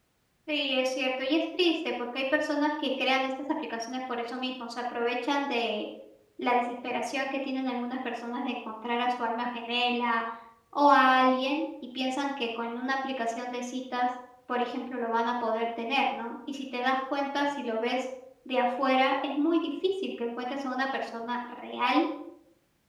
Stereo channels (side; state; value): both; identical; correlation 1.00